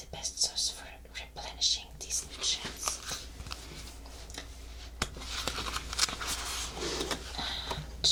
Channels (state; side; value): identical; both; correlation 1.00